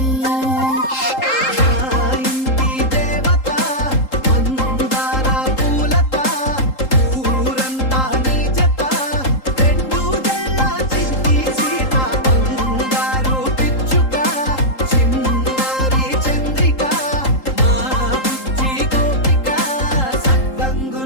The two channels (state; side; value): late; right; 3.8 ms